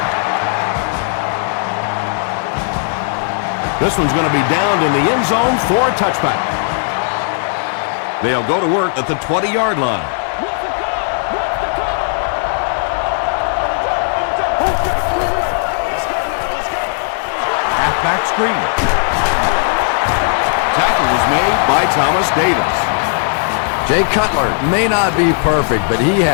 This one's going to be downed in the end zone for a touchback. They'll go to work at the 20-yard line. Halfback screen. Tackle was made by Thomas Davis. Jay Cutler may not be perfect, but he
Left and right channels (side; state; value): right; silent; digital silence